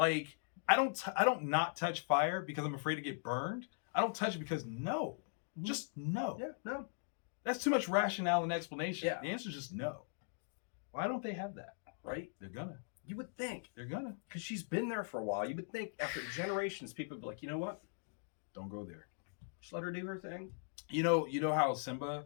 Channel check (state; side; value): silent; right; digital silence